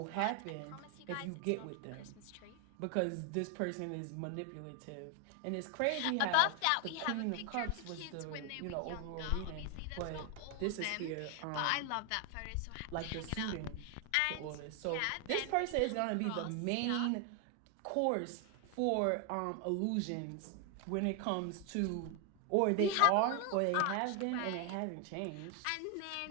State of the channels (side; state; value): both; different; correlation 0.01